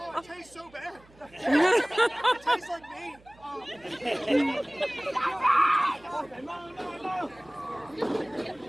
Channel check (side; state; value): right; noise; hum, 27 dB below the sound